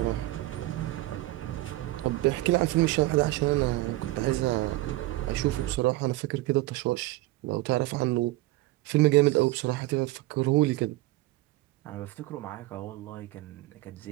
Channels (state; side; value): quieter; left; 18.4 dB